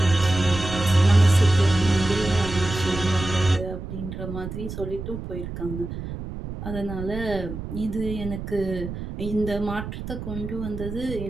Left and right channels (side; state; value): right; noise; rumble, 8 dB below the sound